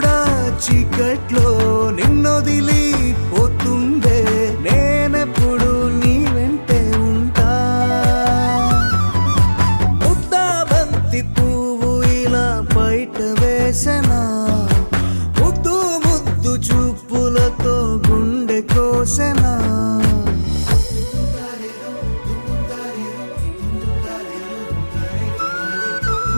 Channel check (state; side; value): inverted; both; correlation -1.00